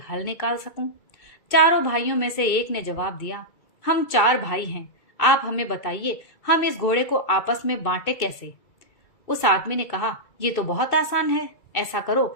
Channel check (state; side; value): late; right; 2.6 ms